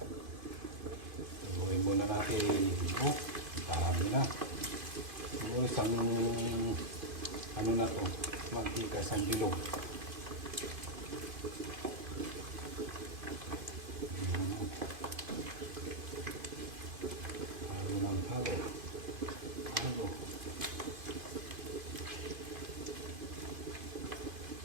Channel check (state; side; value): late; left; 2.5 ms